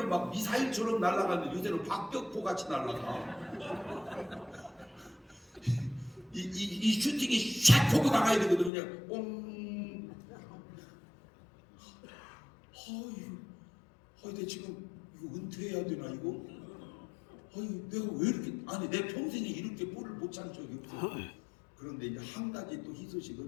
막 미사일처럼 날아갔는데 요새는 박격포 같이 날아가. 이 슈팅이 샥 보고 나가야 되거든요. 그냥 뽕. 내 지금 이거 은퇴해야 되나 이거? 내가 왜 이렇게 아니 내 평생에 이렇게 볼을 못 찬 적이 없어. 그런데 이제 한 가지 또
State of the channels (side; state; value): right; drops out; at 8.7 s